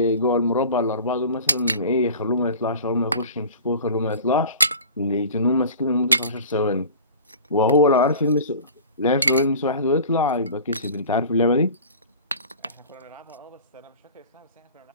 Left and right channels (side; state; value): both; inverted; correlation -0.40